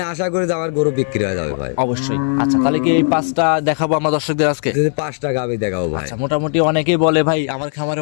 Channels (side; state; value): right; silent; digital silence